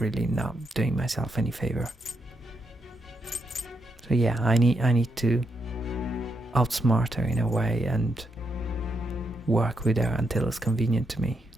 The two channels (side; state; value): both; normal; correlation 0.81